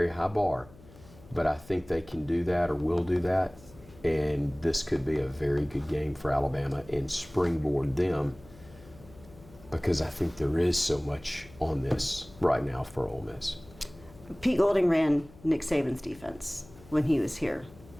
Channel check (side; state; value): left; noise; hum, 22 dB below the sound